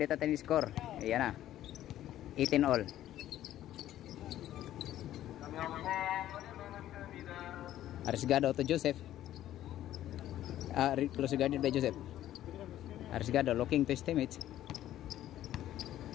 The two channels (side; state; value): right; quieter; 12.9 dB